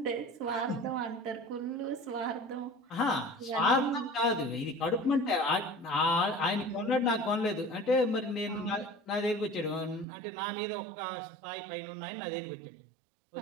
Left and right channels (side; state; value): left; drops out; at 10.1 s